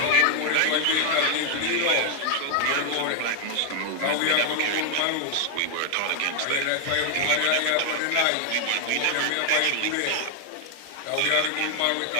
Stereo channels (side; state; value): both; different; correlation 0.00